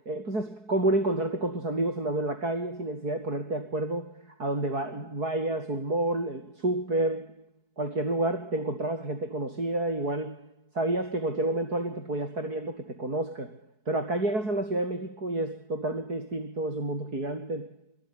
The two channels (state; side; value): late; left; 4.7 ms